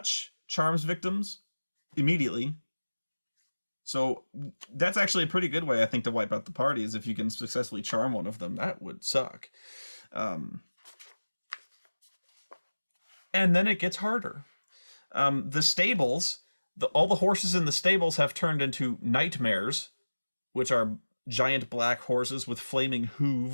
charms victims immediately. So that's actually a pretty good way, I think, to wipe out the party, is if you can successfully charm one of them. That would suck. And then it gets harder. The stables, all the horses in the stables have turned into nightmares, which are giant black horses with flaming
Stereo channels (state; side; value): inverted; both; correlation -1.00